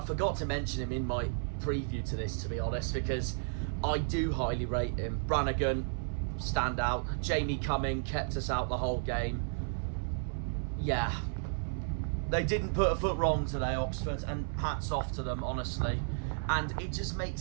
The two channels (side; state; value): left; silent; 56 dB below the other